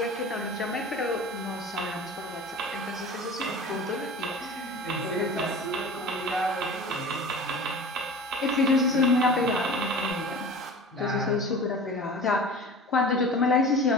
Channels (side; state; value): both; normal; correlation 0.37